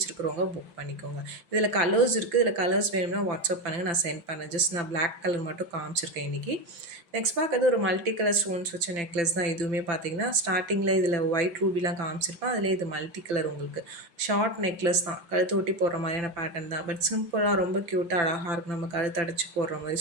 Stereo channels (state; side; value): late; left; 5.9 ms